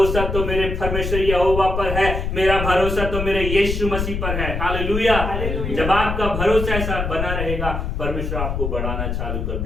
तो मेरे परमेश्वर यहोवा पर है, मेरा भरोसा तो मेरे यीशु मसीह पर है। हालेलुया। जब आपका भरोसा ऐसा बना रहेगा, परमेश्वर आपको बढ़ाना चालू कर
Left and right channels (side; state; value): left; noise; rumble, 3 dB below the sound